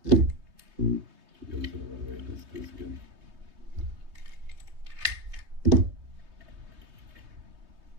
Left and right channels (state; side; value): late; left; 3.2 ms